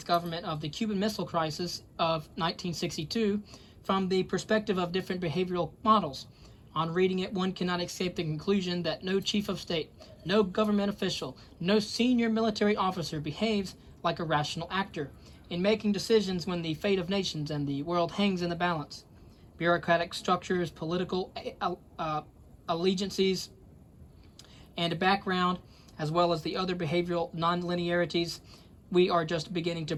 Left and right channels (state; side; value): identical; both; correlation 1.00